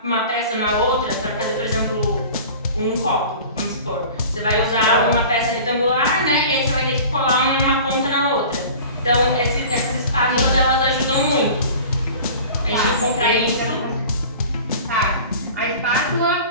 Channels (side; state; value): both; inverted; correlation -0.41